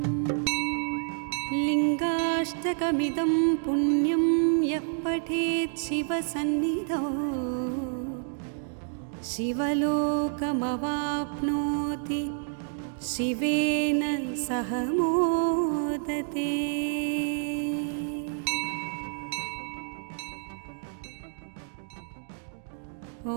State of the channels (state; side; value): silent; left; digital silence